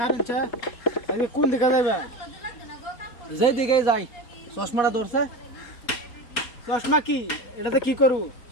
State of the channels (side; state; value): right; late; 4.2 ms